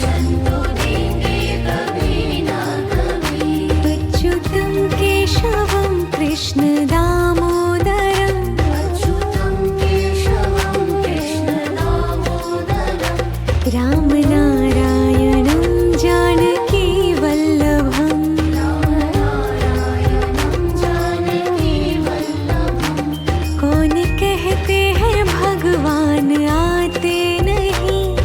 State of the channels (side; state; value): both; identical; correlation 1.00